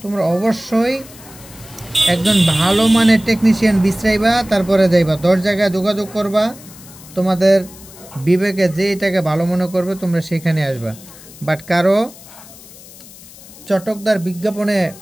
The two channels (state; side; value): noise; left; hiss, 19 dB below the sound